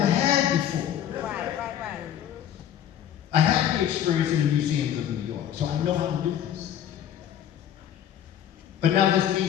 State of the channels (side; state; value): right; quieter; 10.3 dB